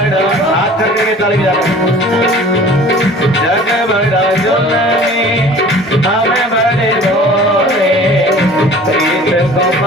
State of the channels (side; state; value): both; normal; correlation 0.46